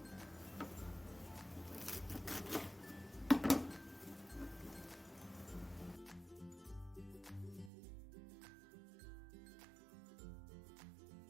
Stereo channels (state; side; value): drops out; left; at 7.7 s